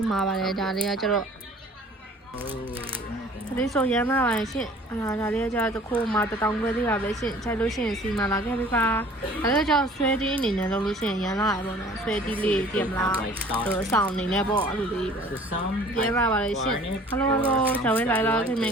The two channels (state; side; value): normal; both; correlation 0.50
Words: မာပါတယ်ဒါလေးကကျတော့ဒါလေးဆိုရမ်းလာပါရှင်ဒါလေးကကျတော့တစ်ခုမှ1000ခွဲသေးပါပဲရှင်ခြိုက်လို့ရှိရင်စီမာလာခဲ့ပြီပါဒါလေးကကျတော့ဆွဲတီးအနေနဲ့လုပ်လို့ရှိရင်ရမ်းလာရပေါ့နော်ဆွဲတီးလေးပြင်မလားအဆောင်အနေနဲ့ပေါ့အဲ့လိုလေးပဲရမ်းလာပါလေရှင် hello 小薇来了可以